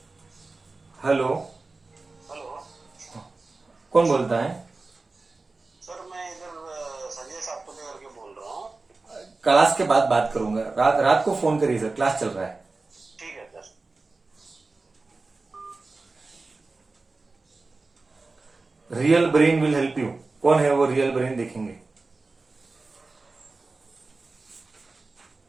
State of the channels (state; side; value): quieter; left; 3.6 dB